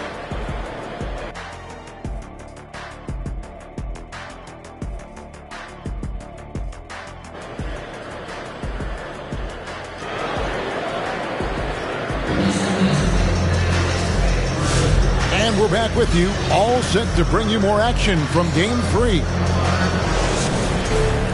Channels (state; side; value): identical; both; correlation 1.00